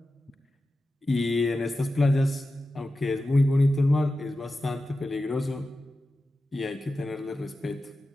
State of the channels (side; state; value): both; normal; correlation 0.93